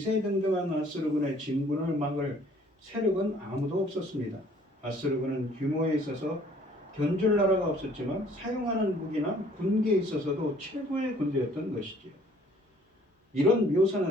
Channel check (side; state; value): both; normal; correlation 0.58